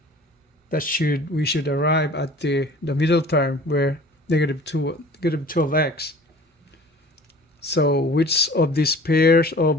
we should arrive at the middle term where negative 12x. So which of these pairs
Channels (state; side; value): normal; both; correlation 0.46